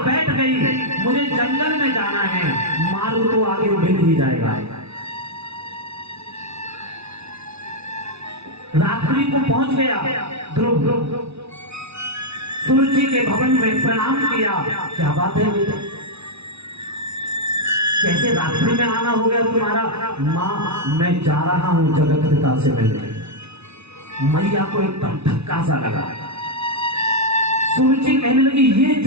बैठ गई, मुझे जंगल में जाना है, मार्ग तो आगे मिल ही जाएगा। रात्रि को पहुंच गया ध्रुव, सुरुचि के भवन में प्रणाम किया। क्या बात है बेटा, कैसे रात्रि में आना हो गया तुम्हारा? मां, मैं जा रहा हूं जगत पिता से मिलने। मैया को एकदम धक्का सा लगा। सुरुचि कहने लगी, ये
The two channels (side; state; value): left; late; 0.80 ms